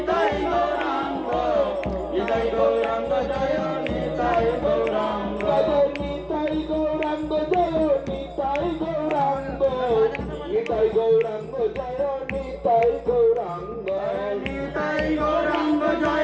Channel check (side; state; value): both; identical; correlation 1.00